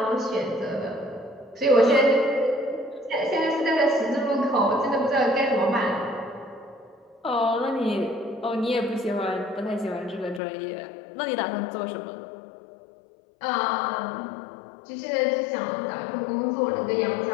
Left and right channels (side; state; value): right; drops out; at 10.4 s